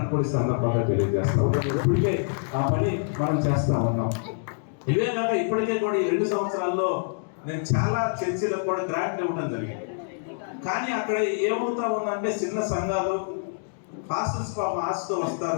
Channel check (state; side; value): silent; right; digital silence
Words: కూడా ఈ సందర్భంగా తెలియజేస్తాం. ఇప్పటికే ఆ పని మనం చేస్తా ఉన్నాం. ఇవే కాక ఇప్పటికే కూడా ఈ 2 సంవత్సరాల్లో నేను చాలా చర్చిలకు కూడా గ్రాంట్లు ఇవ్వడం జరిగింది. కానీ అక్కడ ఏమవుతా ఉందంటే చిన్న సంఘాలు పాస్టర్స్ పాపం ఆశతో